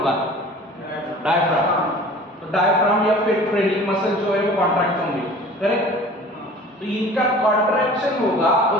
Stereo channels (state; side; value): normal; both; correlation 0.44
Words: डायफ्राम। तो डायफ्राम या फिर ट्रेनिंग मसल जो है वो कॉन्ट्रैक्ट होंगे, करेक्ट। तो इनका कॉन्ट्रैक्शन होगा, और